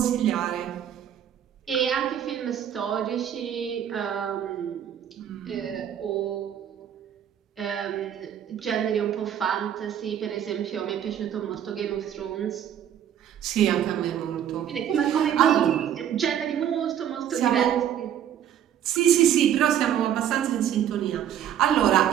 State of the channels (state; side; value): quieter; left; 9.9 dB